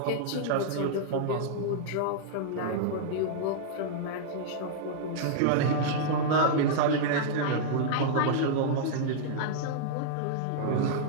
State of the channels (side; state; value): both; different; correlation -0.02